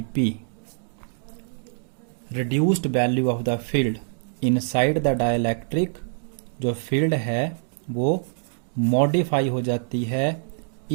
P. Reduced value of the field inside the dielectric, जो फील्ड है वो मॉडिफाई हो जाती है,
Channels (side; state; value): left; silent; digital silence